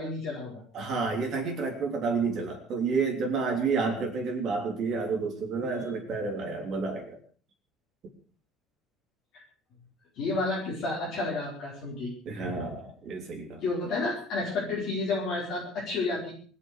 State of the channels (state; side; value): normal; both; correlation 0.49